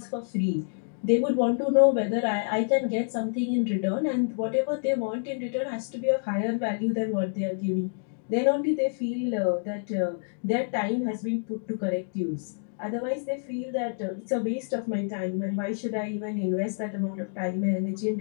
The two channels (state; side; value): silent; right; digital silence